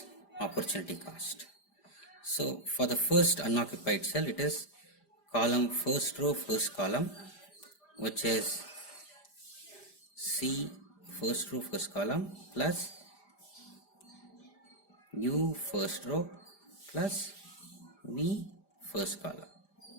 opportunity cost. So for the first unoccupied cell, it is column first row first column, which is C first row first column plus U first row plus V first column.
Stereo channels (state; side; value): late; right; 5.0 ms